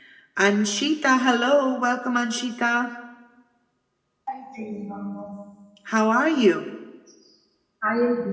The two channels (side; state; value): both; identical; correlation 1.00